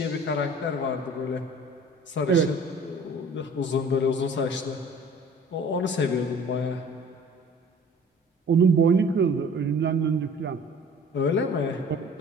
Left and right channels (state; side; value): normal; both; correlation 0.48